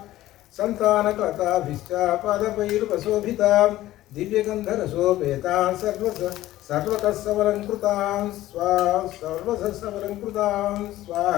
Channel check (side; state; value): right; quieter; 15.2 dB